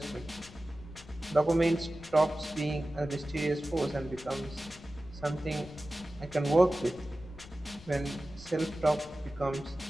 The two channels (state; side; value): noise; left; rumble, 19 dB below the sound